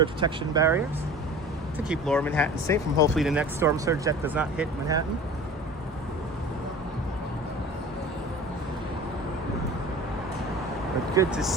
protection barriers to keep lower Manhattan safe from hopefully the next storm surge that does not hit Manhattan. But good to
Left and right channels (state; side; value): normal; both; correlation 0.40